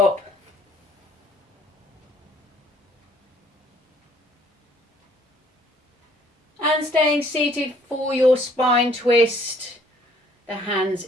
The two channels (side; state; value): both; normal; correlation 0.61